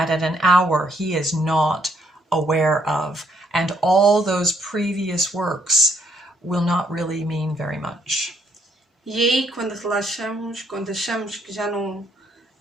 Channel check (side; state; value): both; normal; correlation 0.72